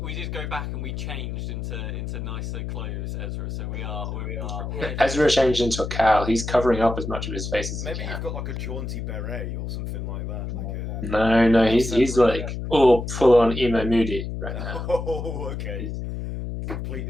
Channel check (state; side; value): noise; left; hum, 5 dB below the sound